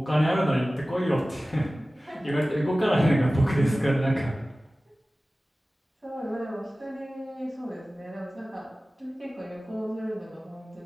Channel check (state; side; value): normal; both; correlation 0.97